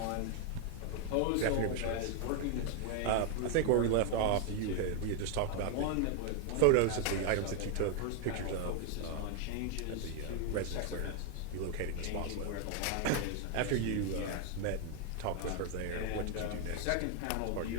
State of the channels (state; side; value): different; both; correlation 0.01